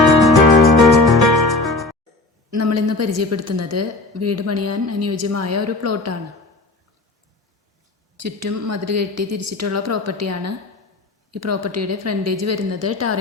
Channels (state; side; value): quieter; right; 3.1 dB